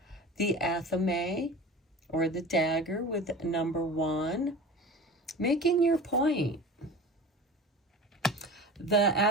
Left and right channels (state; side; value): normal; both; correlation 0.36